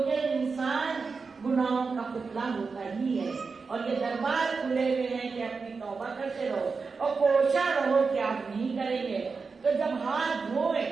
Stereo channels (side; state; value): left; quieter; 4.7 dB